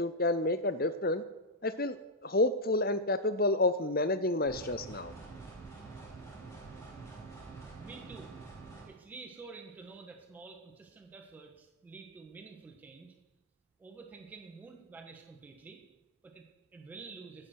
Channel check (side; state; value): both; normal; correlation -0.05